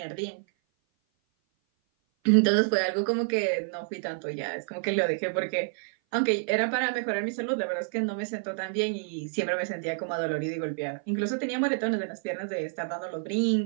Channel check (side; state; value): left; silent; 56 dB below the other